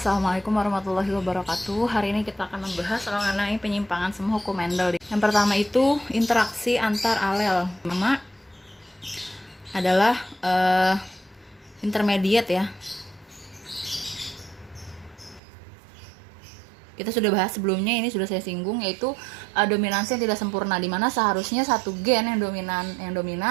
warahmatullahi wabarakatuh. Hari ini kita akan membahas mengenai penyimpangan semua hukum Mendel. Yang pertama itu interaksi antar alel. Pertama adalah intermediate ya. Kita sudah bahas sebelumnya, ini sudah saya singgung, yaitu dominansi yang tidak sempurna, di mana seharusnya satu gen yang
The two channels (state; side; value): drops out; left; at 15.4 s